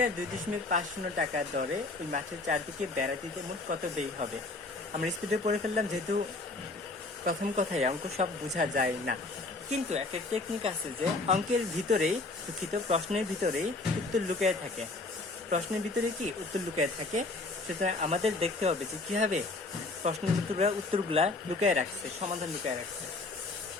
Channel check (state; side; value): quieter; right; 3.3 dB